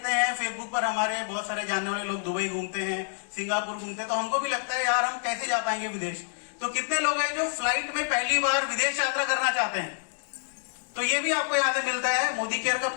हैं फेसबुक पर हमारे बहुत सारे जानने वाले लोग दुबई घूमते हैं, सिंगापुर घूमते हैं, तो हमको भी लगता है यार हम कैसे जा पाएंगे विदेश। तो कितने लोग हैं जो फ्लाइट में पहली बार विदेश यात्रा करना चाहते हैं, तो ये भी आपको यहाँ से मिलता है। मोदी केयर का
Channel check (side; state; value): right; silent; digital silence